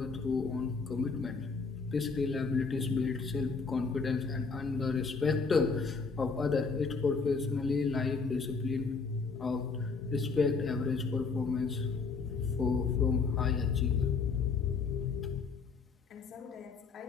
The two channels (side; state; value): right; quieter; 4.8 dB